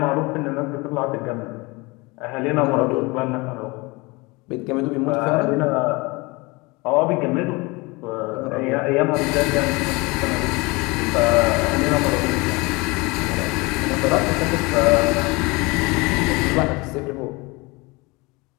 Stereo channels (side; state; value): right; quieter; 25.1 dB